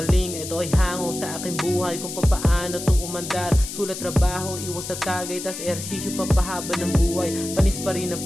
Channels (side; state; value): left; noise; hiss, 8 dB below the sound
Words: Ito ay hango sa aking buhay kung papaano to umandar. Sulat, trabaho, iwas sa tagay, tas ehersisyo papahaba ng buhay. Panis pa rin